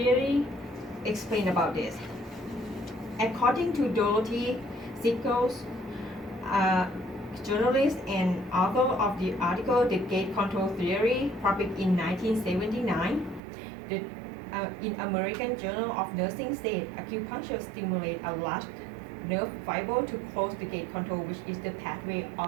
explain about this. According to Dorothy Sickles, journalist and author of the article The Gate Control Theory, published in 1979, in American Journal of Nursing said acupuncture stimulates a large nerve fiber to close the gate control, which is the pathway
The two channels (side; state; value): left; drops out; at 13.4 s